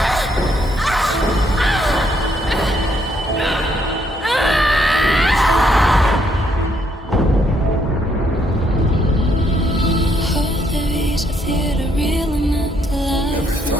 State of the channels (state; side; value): normal; both; correlation 0.72